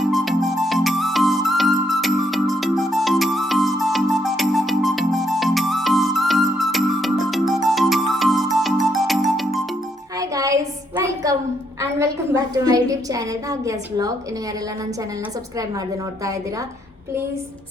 welcome back to my YouTube channel Bhagya's vlog. ಇನ್ನು ಯಾರೆಲ್ಲ ನನ್ನ ಚಾನೆಲ್ನ ಸಬ್ಸ್ಕ್ರೈಬ್ ಮಾಡದೆ ನೋಡ್ತಾ ಇದ್ದೀರಾ ಪ್ಲೀಸ್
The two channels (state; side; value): normal; both; correlation 0.74